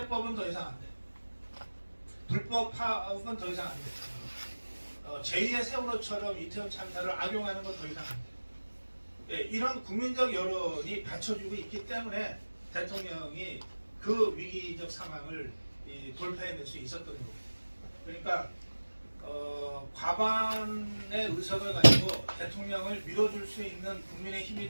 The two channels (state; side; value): inverted; both; correlation -1.00